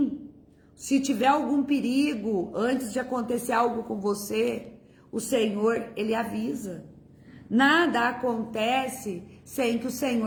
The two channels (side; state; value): both; identical; correlation 1.00